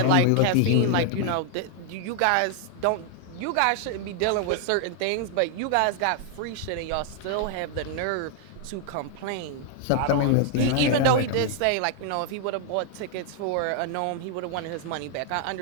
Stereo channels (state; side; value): different; both; correlation 0.00